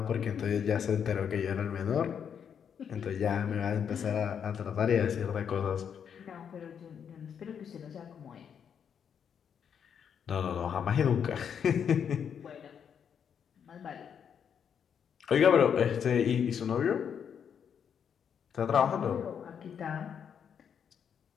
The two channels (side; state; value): right; quieter; 7.8 dB